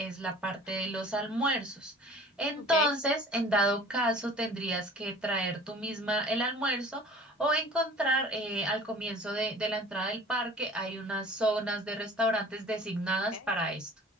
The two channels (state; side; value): normal; both; correlation 0.46